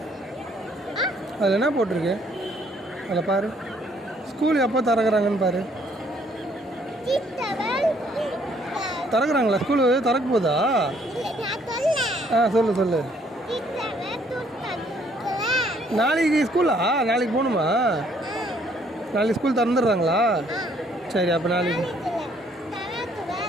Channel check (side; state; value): both; normal; correlation 0.65